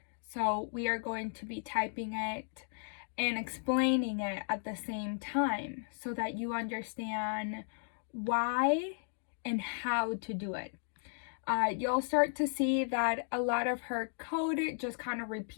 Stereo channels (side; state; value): right; silent; digital silence